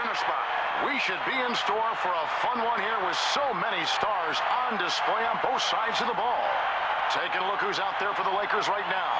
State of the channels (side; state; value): both; identical; correlation 1.00